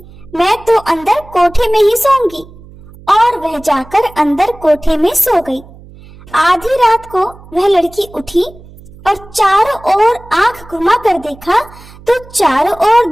मैं तो अंदर कोठे में ही सोऊंगी। और वह जाकर अंदर कोठे में सो गई। आधी रात को वह लड़की उठी और चारों ओर आंख घुमा कर देखा तो चारों ओर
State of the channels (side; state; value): right; noise; hum, 21 dB below the sound